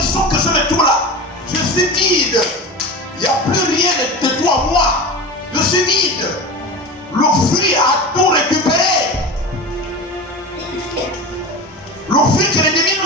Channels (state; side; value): normal; both; correlation 0.28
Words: que je me trouve là, je suis vide. Il n'y a plus rien de toi, moi. Je suis vide. Le fruit a tout récupéré. Le fruit que l'ennemi